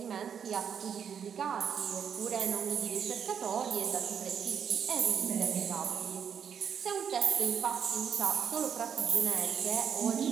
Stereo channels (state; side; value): quieter; left; 7.7 dB